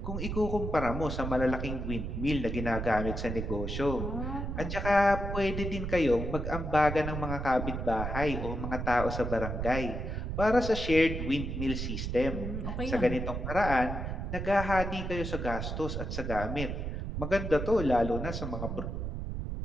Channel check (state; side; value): noise; right; rumble, 4 dB below the sound